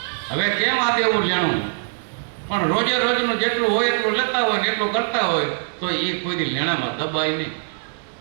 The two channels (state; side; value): silent; left; digital silence